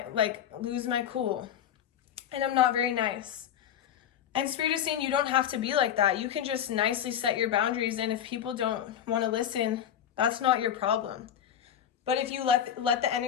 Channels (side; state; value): right; quieter; 9.8 dB